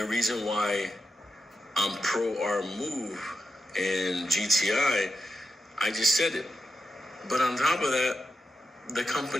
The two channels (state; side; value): normal; both; correlation 0.88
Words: reason why I'm pro our move in GTI, I just said it. But on top of that, the